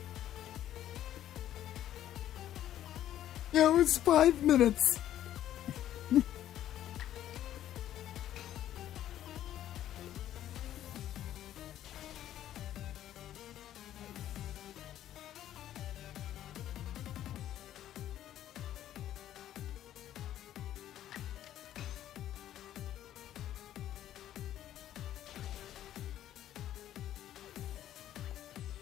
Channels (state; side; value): quieter; right; 12.0 dB